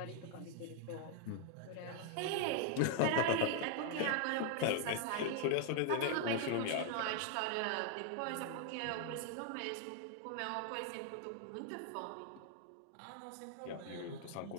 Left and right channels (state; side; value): different; both; correlation 0.00